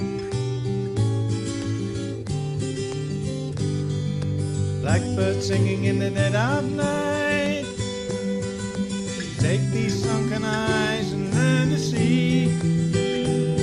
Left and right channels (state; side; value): identical; both; correlation 1.00